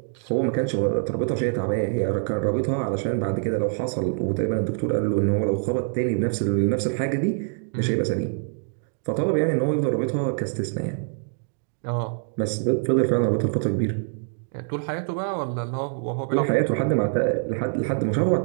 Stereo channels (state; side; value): silent; left; 61 dB below the other